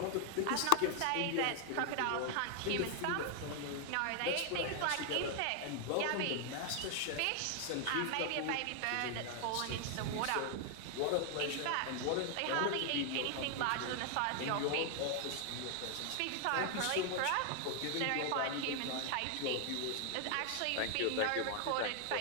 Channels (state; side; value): different; both; correlation 0.00